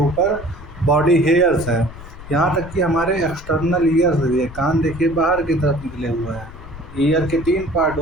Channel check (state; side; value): noise; left; rumble, 15 dB below the sound